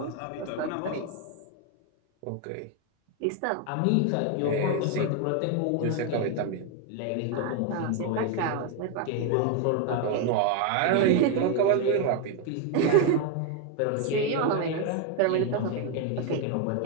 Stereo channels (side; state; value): both; different; correlation 0.01